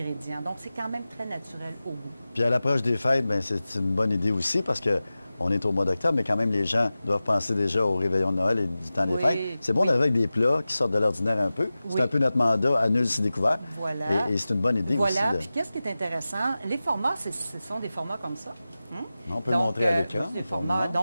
donc c'est quand même très naturel au goût. Puis à l'approche des fêtes, c'est une bonne idée aussi parce que on est au mois d'octobre, mais quand même, les gens doivent penser déjà au réveillon de Noël et du temps des fêtes. C'est bon d'arriver avec des plats qui sortent de l'ordinaire un peu. C'est un peu notre mandat à nul si découvert. Voilà. Et c'est une bonne idée aussi. Voilà. Puis qu'est-ce qui est intéressant? Les formats, ce sont des formats comme ça. On peut le montrer à l'écran.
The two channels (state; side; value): inverted; both; correlation -0.96